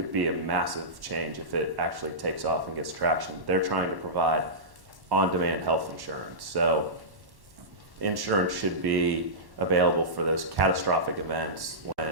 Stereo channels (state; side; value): late; left; 1.1 ms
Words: be a massive change if it actually takes off and gets traction. They're trying to provide on-demand health insurance. So insurance should be available for those catastrophic events